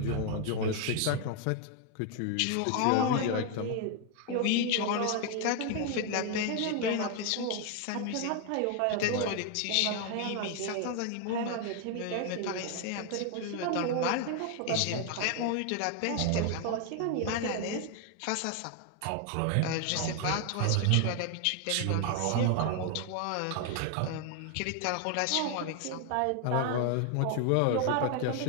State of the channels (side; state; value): both; different; correlation 0.00